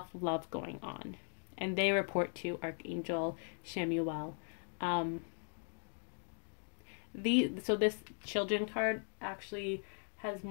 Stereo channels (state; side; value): silent; right; 52 dB below the other